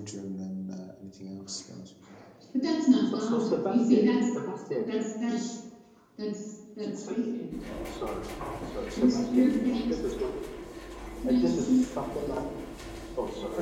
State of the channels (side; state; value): both; identical; correlation 1.00